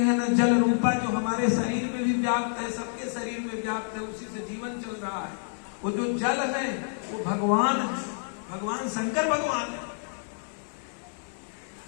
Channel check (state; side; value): silent; right; digital silence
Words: ना जल रूपा, जो हमारे शरीर में भी व्याप्त है, सबके शरीर में व्याप्त है, उसी से जीवन चल रहा है। वो जो जल है वो भगवान है, भगवान शंकर भगवान है।